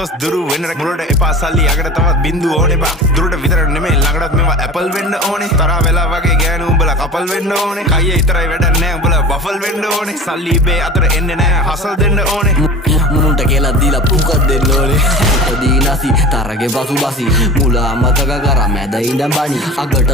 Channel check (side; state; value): both; normal; correlation 0.36